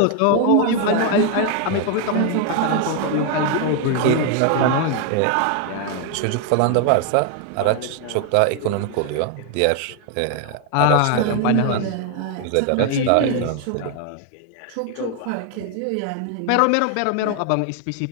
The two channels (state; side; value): different; both; correlation 0.00